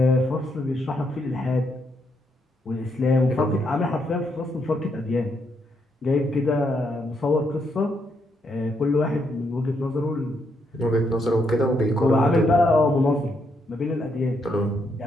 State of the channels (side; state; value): both; normal; correlation 0.77